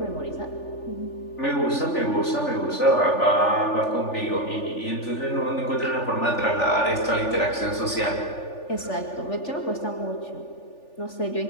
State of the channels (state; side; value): late; right; 3.4 ms